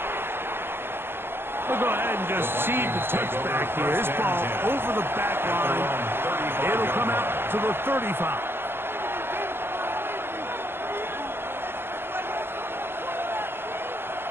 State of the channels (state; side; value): late; left; 0.11 ms